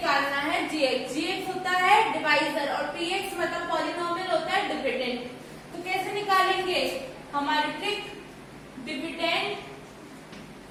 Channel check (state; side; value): identical; both; correlation 1.00